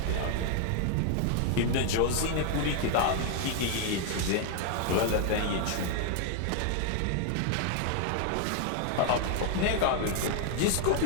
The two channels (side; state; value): both; different; correlation 0.00